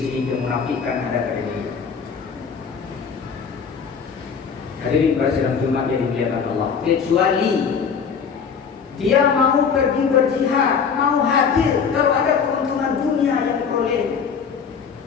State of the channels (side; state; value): right; quieter; 6.3 dB